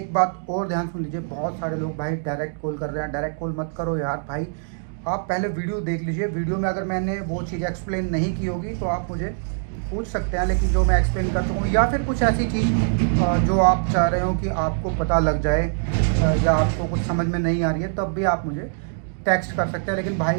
बात और ध्यान सुन लीजिए, बहुत सारे लोग भाई डायरेक्ट कॉल कर रहे हैं। डायरेक्ट कॉल मत करो यार भाई, आप पहले वीडियो देख लीजिए। वीडियो में अगर मैंने वो चीज़ एक्सप्लेन नहीं की होगी तो आप मुझे पूछ सकते हैं, लेकिन जो मैं एक्सप्लेन कर चुका हूँ, या फिर कुछ ऐसी चीज़ जो आप चाह रहे हो कि आपको पता लग जाए, या आपको कुछ समझ में नहीं आ रही है, तब भी आप मुझे टेक्स्ट कर सकते हैं। लेकिन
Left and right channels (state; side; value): silent; left; digital silence